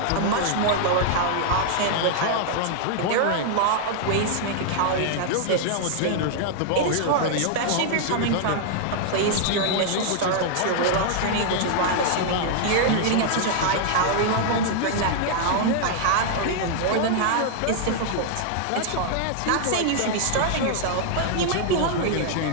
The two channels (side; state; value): both; different; correlation -0.01